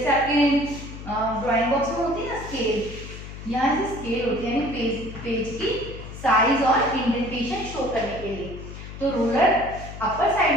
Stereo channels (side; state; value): left; noise; hum, 12 dB below the sound